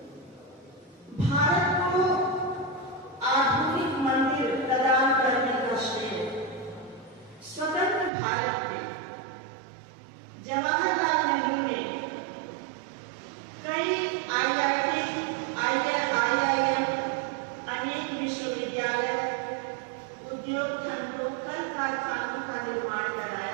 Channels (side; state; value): left; drops out; at 8.1 s